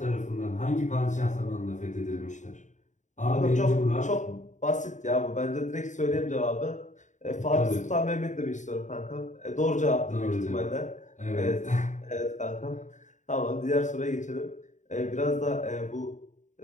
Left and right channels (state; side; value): late; right; 0.35 ms